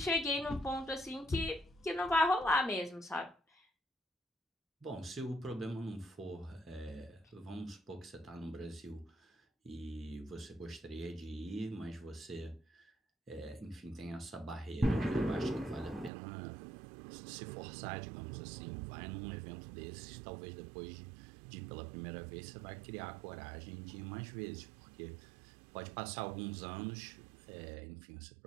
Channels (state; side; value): drops out; left; at 16.1 s